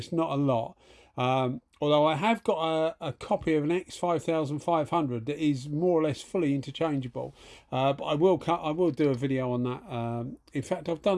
not a lot. Although I have got a copy of an X5500 that is more or less fully interchangeable. But I will do a video on that. In fact,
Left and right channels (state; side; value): identical; both; correlation 1.00